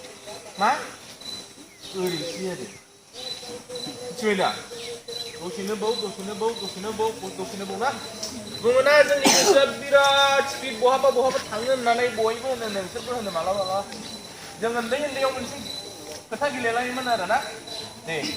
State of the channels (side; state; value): both; identical; correlation 1.00